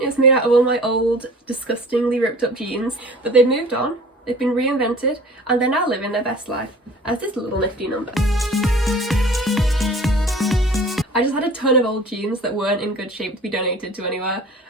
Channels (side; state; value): both; normal; correlation 0.45